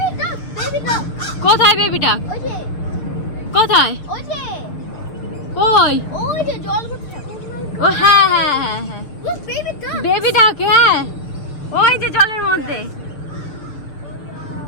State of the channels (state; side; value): late; right; 6.7 ms